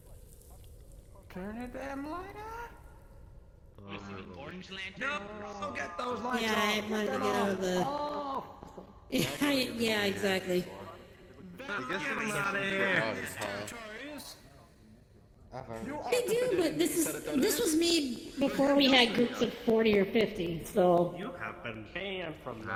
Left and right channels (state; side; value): identical; both; correlation 1.00